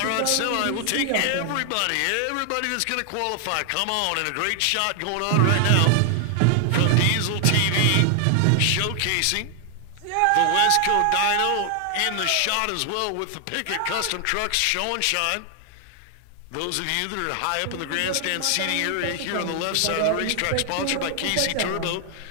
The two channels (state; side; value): different; both; correlation 0.00